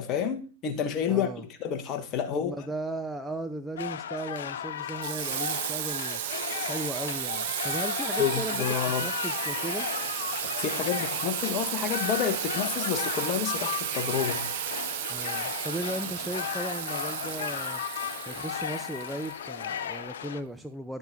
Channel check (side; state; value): both; normal; correlation -0.04